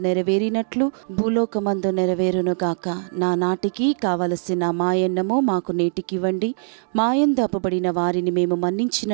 నెరవేరినట్లు భూలోకమందు నెరవేరును గాక. నా నాటికి కావలసిన మాయన్నము మాకు నేటికివ్వండి, మాయందు అప్పబడిన వారిని మేము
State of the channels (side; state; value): left; silent; digital silence